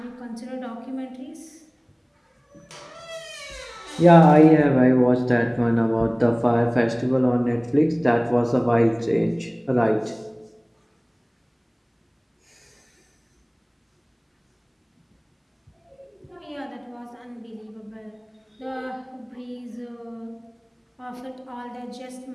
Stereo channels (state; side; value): identical; both; correlation 1.00